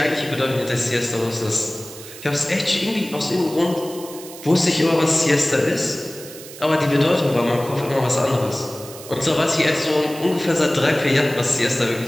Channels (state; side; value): noise; right; hiss, 15 dB below the sound